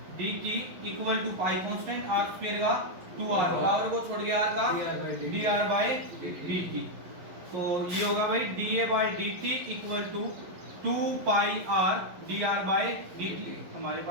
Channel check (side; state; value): left; late; 11 ms